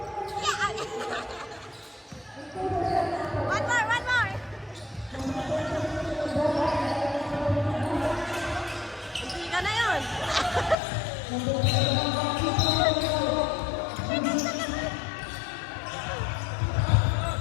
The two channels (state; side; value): drops out; right; at 10.8 s